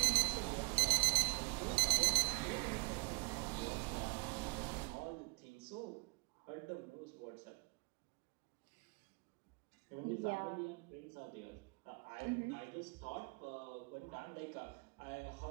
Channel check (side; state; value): left; quieter; 30.7 dB